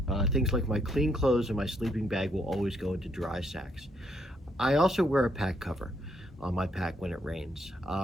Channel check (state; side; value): normal; both; correlation 0.73